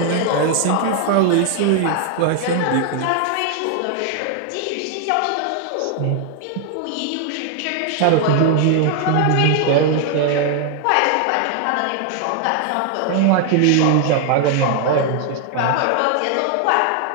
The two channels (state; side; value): different; both; correlation 0.00